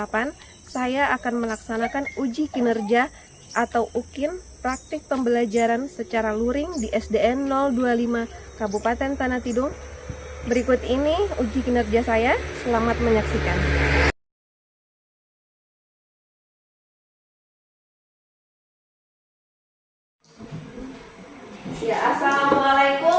saya akan melaksanakan uji kinerja atau UKIN praktik pembelajaran secara luring di SDN 025 Kabupaten Tanah Tidung. Berikut ini uji kinerja saya, selamat menyaksikan. Ya,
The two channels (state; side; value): identical; both; correlation 1.00